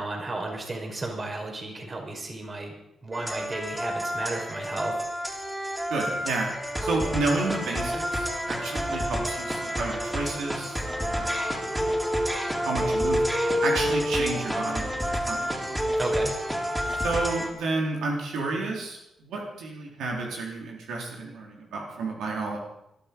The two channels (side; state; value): both; normal; correlation 0.88